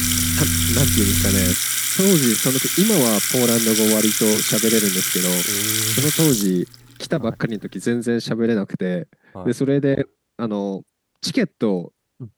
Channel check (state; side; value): identical; both; correlation 1.00